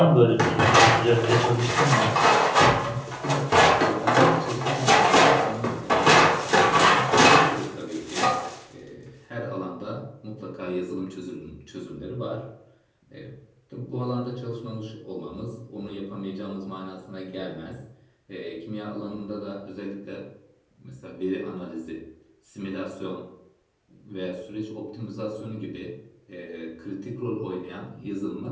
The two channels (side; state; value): both; identical; correlation 1.00